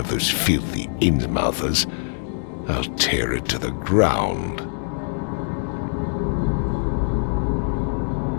those filthy Innsmouthers. I'll tear it to the ground.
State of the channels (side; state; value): right; silent; digital silence